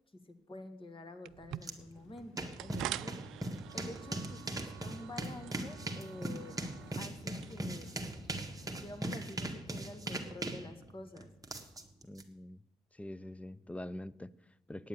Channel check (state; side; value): normal; both; correlation 0.65